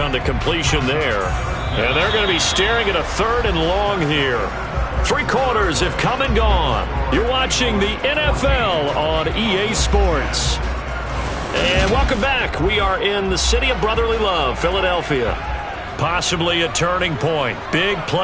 the completion there. And they're going to be staring at a 3rd and long here. 3 quarters have come and gone. You're watching the NFL on EA Sports. And welcome back. We are in the city of brotherly love, Philadelphia. Possibly a turning point. Big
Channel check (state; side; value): identical; both; correlation 1.00